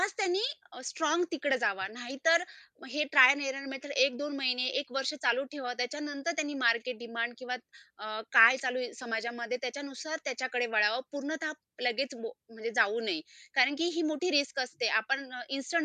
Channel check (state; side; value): identical; both; correlation 1.00